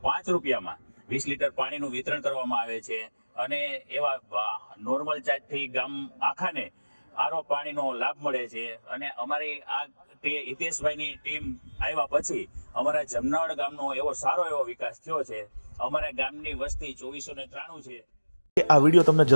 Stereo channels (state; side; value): inverted; both; correlation -1.00